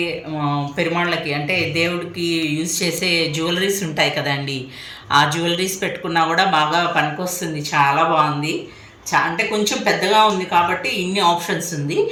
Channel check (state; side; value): identical; both; correlation 1.00